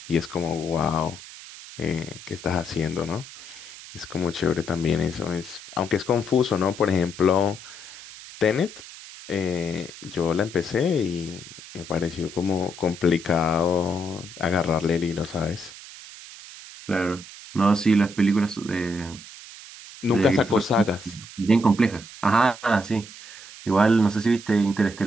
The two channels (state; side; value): noise; right; hiss, 16 dB below the sound